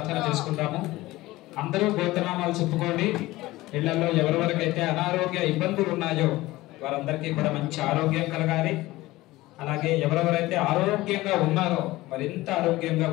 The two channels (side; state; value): right; quieter; 18.4 dB